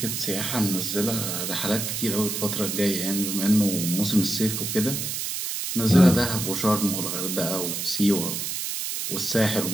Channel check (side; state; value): right; noise; hiss, 3 dB below the sound